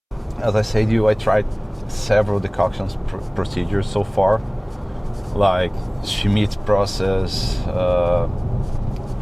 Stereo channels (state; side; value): identical; both; correlation 1.00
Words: as I said to you, I tried several decoctions procedures so far, like Schmidt process,